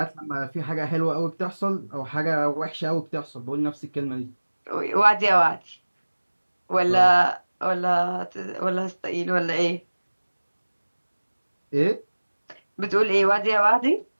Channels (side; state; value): both; inverted; correlation -1.00